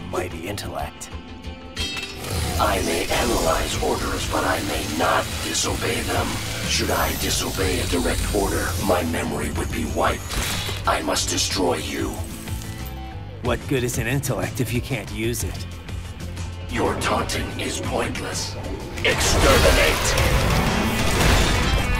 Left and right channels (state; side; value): identical; both; correlation 1.00